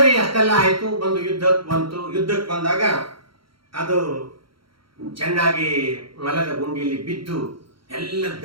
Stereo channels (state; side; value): late; left; 0.74 ms